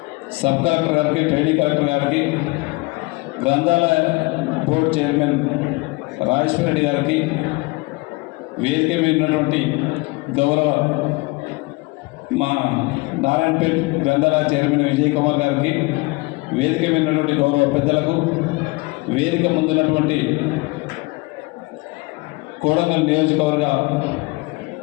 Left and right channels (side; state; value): right; quieter; 24.8 dB